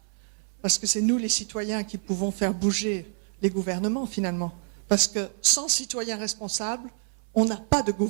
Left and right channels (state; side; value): silent; left; 60 dB below the other